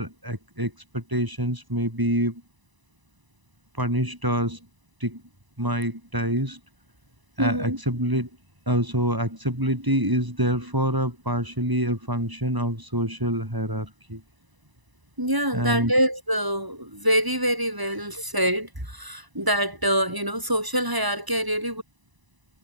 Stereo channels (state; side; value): late; left; 1.0 ms